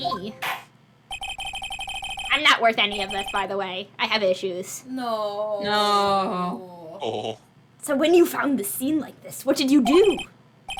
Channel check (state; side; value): identical; both; correlation 1.00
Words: I'm not worth any of this, by the way. I have issues. No. No. Oh. So when you found the scene like this, what did you do?